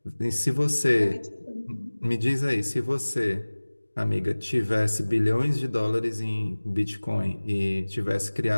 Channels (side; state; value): both; inverted; correlation -1.00